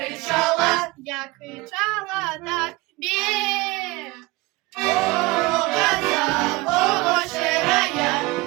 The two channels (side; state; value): left; quieter; 22.2 dB